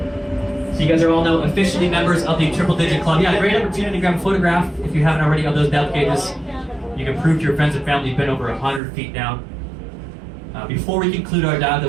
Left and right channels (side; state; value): left; drops out; at 8.8 s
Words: So you guys are all now officially members of the Triple Digit Club. Yeah, great opportunity to grab a photograph if you haven't already of those depth gauges. You can prove to your friends and family you've been over 100 feet down. Before we conclude our dive,